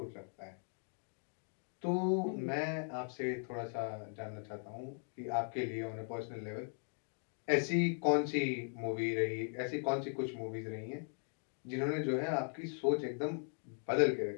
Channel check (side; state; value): right; silent; 52 dB below the other